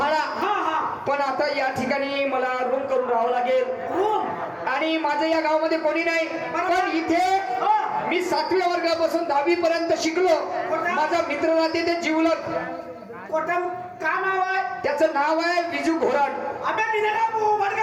हा हा. पण आता या ठिकाणी मला रूम करून राहावं लागेल. रूम? आणि माझं या गावामध्ये कोणी नाही. पण इथे मी 7व्या वर्गापासून 10वी पर्यंत शिकलो. माझा मित्र राहते ते जीवलग. कोटम का नाव आहे? त्याचं नाव आहे विजू घोराड. अबे मी नाही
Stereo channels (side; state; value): both; identical; correlation 1.00